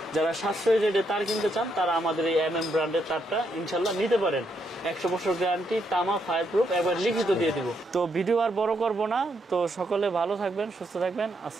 যারা সাশ্রয়ী রেটে তার কিনতে চান তারা আমাদের এই এমএম ব্র্যান্ডের তারটা ইনশাল্লাহ নিতে পারেন। 100 বছর গ্যারান্টি, তামা, ফায়ার প্রুফ, একবার লিখিত দিয়ে দিব। তো ভিডিও আর বড় করবো না। তো সকলে ভালো থাকবেন, সুস্থ থাকবেন।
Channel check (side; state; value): both; normal; correlation 0.77